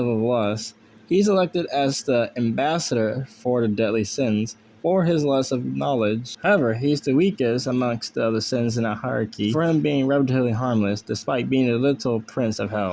of lust. He's elected as the ambassador for the deadly sins for his lust of knowledge. However, he's the weakest amongst the other sins in a hierarchy, for him being relatively harmless despite being the little prince of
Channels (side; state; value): both; identical; correlation 1.00